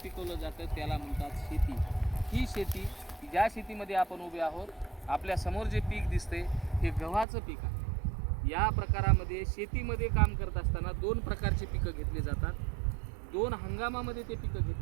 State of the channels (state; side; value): drops out; left; at 7.2 s